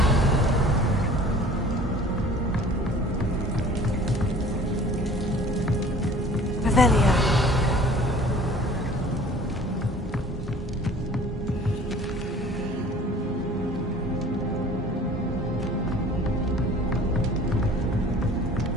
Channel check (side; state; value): both; normal; correlation 0.48